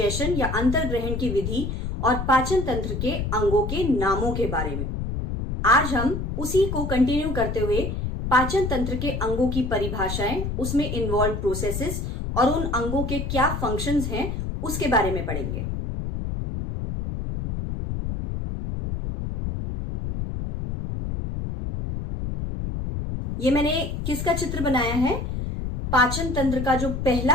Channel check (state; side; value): noise; left; rumble, 3 dB below the sound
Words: या अंतर्ग्रहण की विधि और पाचन तंत्र के अंगों के नामों के बारे में। आज हम उसी को कंटिन्यू करते हुए पाचन तंत्र के अंगों की परिभाषाएं, उसमें इन्वॉल्व प्रोसेसेस और उन अंगों के क्या फंक्शंस हैं उसके बारे में पढ़ेंगे। ये मैंने किसका चित्र बनाया है? पाचन तंत्र का जो